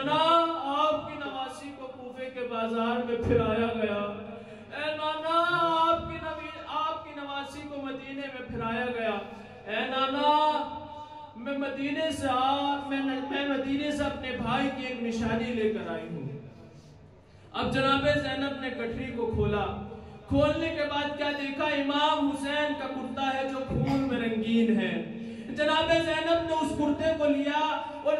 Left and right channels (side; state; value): both; identical; correlation 1.00